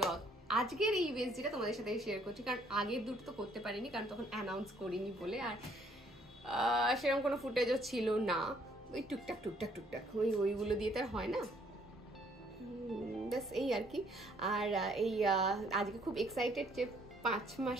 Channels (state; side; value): normal; both; correlation 0.65